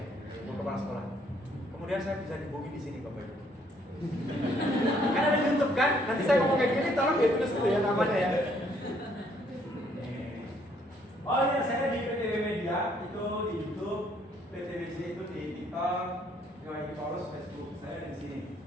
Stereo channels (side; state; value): both; normal; correlation 0.67